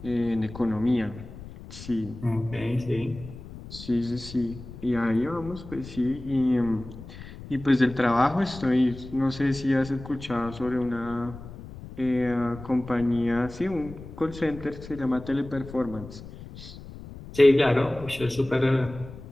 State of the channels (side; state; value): left; noise; rumble, 14 dB below the sound